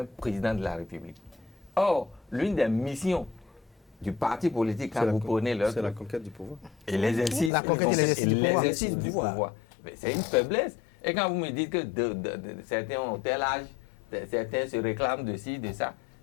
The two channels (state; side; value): drops out; right; at 7.5 s